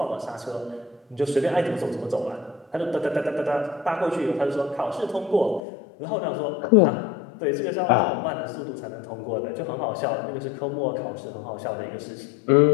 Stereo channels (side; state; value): right; drops out; at 5.6 s